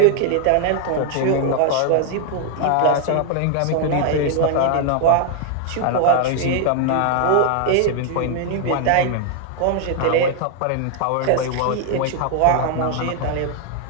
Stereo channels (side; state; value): both; different; correlation 0.00